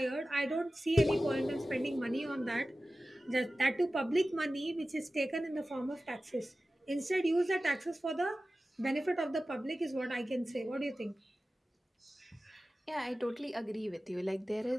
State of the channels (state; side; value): normal; both; correlation 0.95